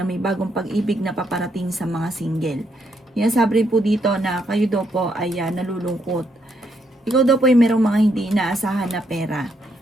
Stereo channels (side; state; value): both; normal; correlation 0.76